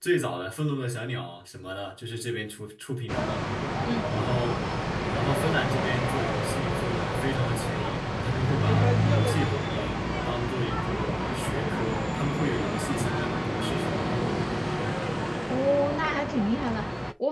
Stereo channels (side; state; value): both; identical; correlation 1.00